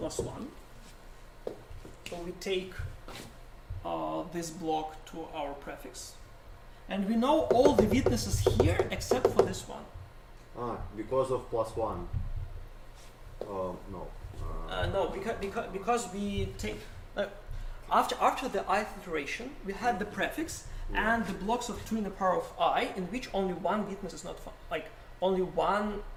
1. So we take this block to our prefix. And we know all the witnesses here except for this one. Because of plus 1. No. No, because we take after the ith iteration we had the prefix Yeah. and the blocks of 2 in the power of I, in which only one witness is not like only one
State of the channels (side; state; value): both; identical; correlation 1.00